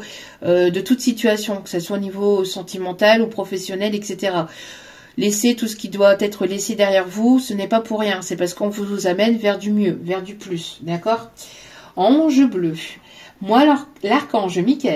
de toute situation, que ce soit au niveau sentimental ou professionnel, etc. Laissez tout ce qui doit être laissé derrière vous, ce n'est pas pour rien, c'est parce qu'on vous amène vers du mieux, vers du plus, d'accord? Ange bleu. Moi, l'archange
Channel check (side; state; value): both; identical; correlation 1.00